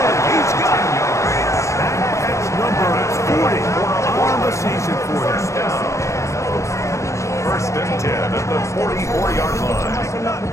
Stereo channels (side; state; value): right; late; 0.14 ms